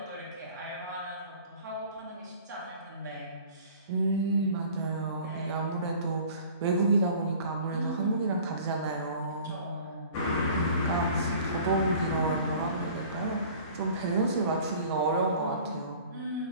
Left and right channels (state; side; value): inverted; both; correlation -0.47